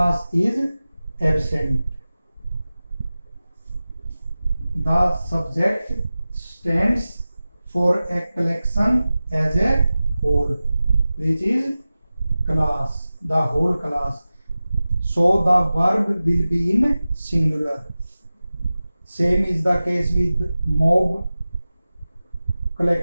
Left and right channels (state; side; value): inverted; both; correlation -0.96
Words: is absent. The subject stands for a collection as a whole, which is class, the whole class. So the verb will be in singular. Same is the case with mob,